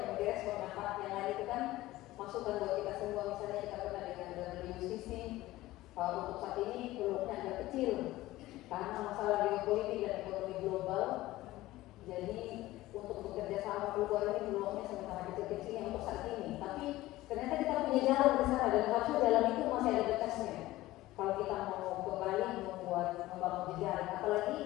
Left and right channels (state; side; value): quieter; right; 17.1 dB